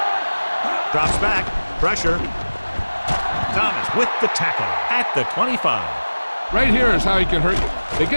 Drops back. Pressure. Thomas with the tackle at the 25. Right here is how he can hurt you. They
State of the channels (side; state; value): both; inverted; correlation -1.00